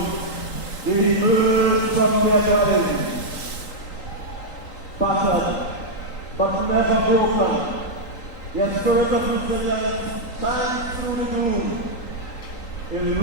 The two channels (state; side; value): late; right; 3.8 ms